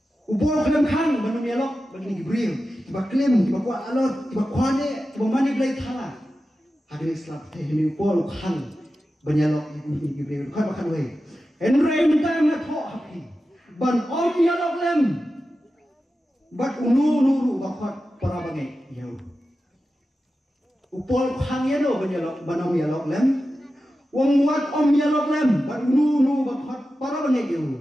Upol kanong kan ban nyalok begini gibrele. Tiba klaim, tiba kuat alor, tiba kuane, tiba mani belai thala. Hari ini selap teh ini upol kan banyalok ini gibril kan makan way. Henry minta nak ho happy. Ban om yalok lem. Bat unu nuru bakot para bangai yau. Upol kan yalo banyalok ban om yalok lem. Wong muat om yalok lem. Bat unu nuru bakot para bangai yau.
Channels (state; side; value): normal; both; correlation 0.92